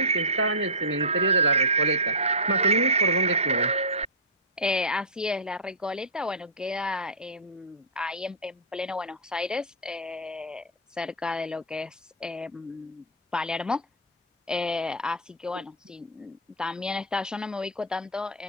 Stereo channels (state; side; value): normal; both; correlation -0.18